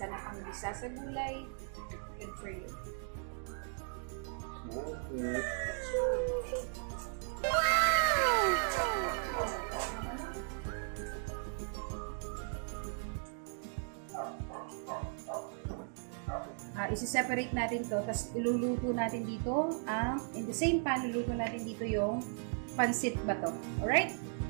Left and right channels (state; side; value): silent; left; 53 dB below the other